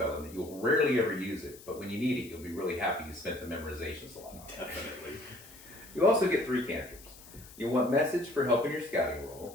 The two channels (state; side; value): noise; left; hiss, 19 dB below the sound